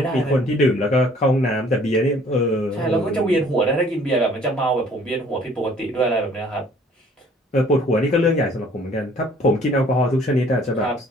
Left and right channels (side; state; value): both; normal; correlation 0.56